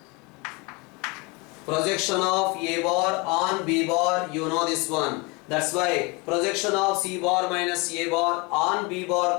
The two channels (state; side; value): quieter; right; 27.9 dB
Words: Projection of A bar on B bar, you know this one. That's why projection of C bar minus A bar on B bar